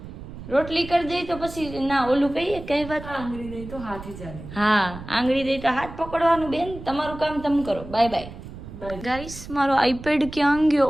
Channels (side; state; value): right; noise; rumble, 13 dB below the sound